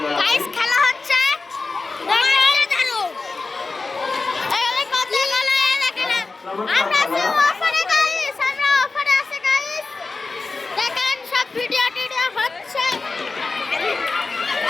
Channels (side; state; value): right; quieter; 3.9 dB